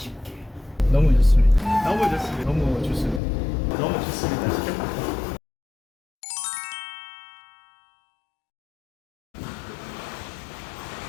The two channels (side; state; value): right; drops out; at 3.2 s